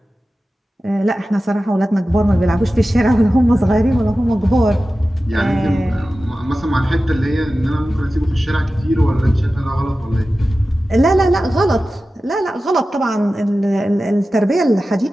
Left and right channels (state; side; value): normal; both; correlation 0.94